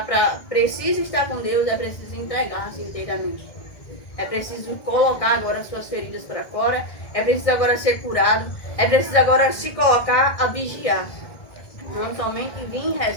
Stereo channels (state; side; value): late; right; 1.6 ms